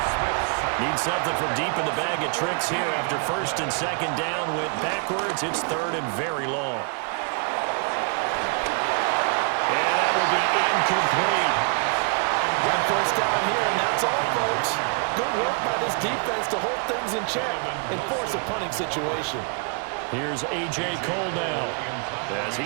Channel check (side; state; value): left; quieter; 39.8 dB